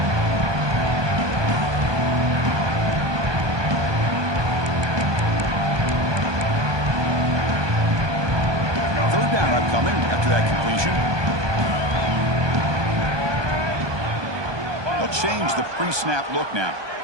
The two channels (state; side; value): late; left; 1.2 ms